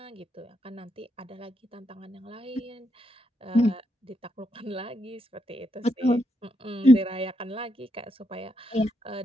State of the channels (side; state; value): both; normal; correlation 0.80